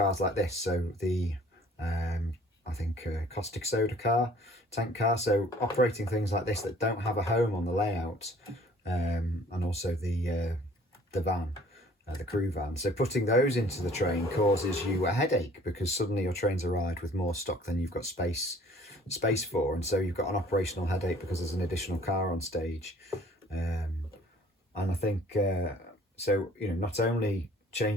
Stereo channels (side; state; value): both; normal; correlation 0.54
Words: like this, so the I think caustic soda car, tank car, so operating things like this that don't have a home on the layout, and also the van, the crew van. So putting those into the train causes you a headache, because suddenly your train's arrived with more stock than you've got space for, and so you've got an operational headache because there's an additional car on stage. And I think, so, you know, not only